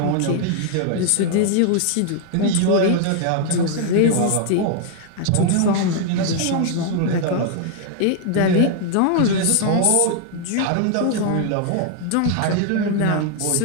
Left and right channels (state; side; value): different; both; correlation 0.00